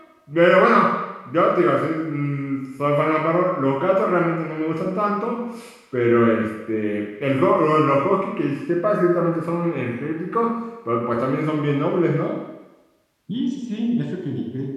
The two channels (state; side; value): identical; both; correlation 1.00